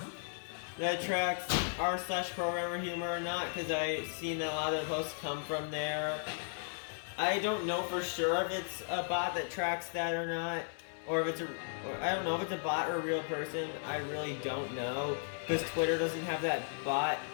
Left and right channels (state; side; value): silent; right; 54 dB below the other